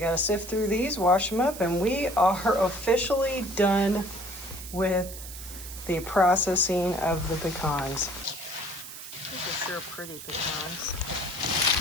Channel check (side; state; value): right; noise; hiss, 12 dB below the sound